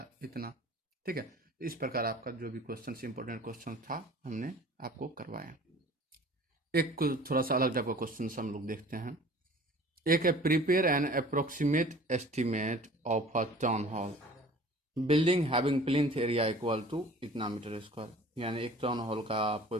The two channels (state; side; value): normal; both; correlation 0.46